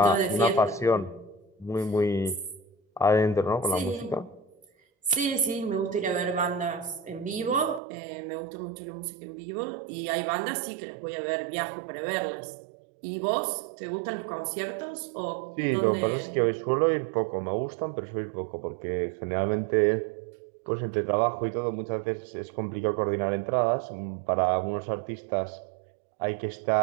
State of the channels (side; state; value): left; drops out; at 7.8 s